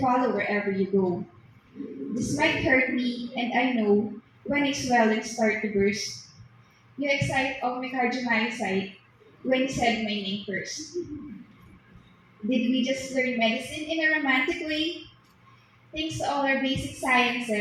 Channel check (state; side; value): identical; both; correlation 1.00